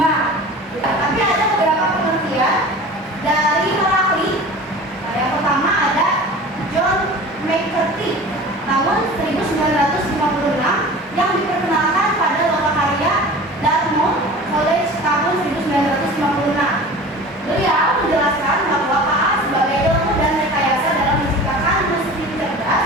Tapi ada beberapa pengertian dari Heracli. Nah, yang pertama ada John McCarthy tahun 1956 yang diperkenalkan pada lokakarya Dartmouth College tahun 1956. Beliau menjelaskan bahwa KA sebagai ilmu dan rekayasa dalam menciptakan mesin cerdas,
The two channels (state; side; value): normal; both; correlation 0.38